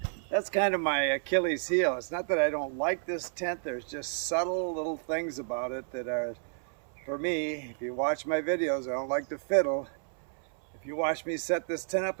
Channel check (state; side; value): silent; left; 57 dB below the other